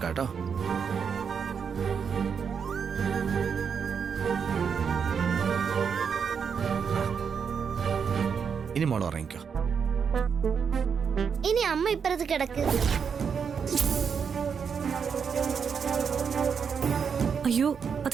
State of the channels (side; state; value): left; quieter; 6.6 dB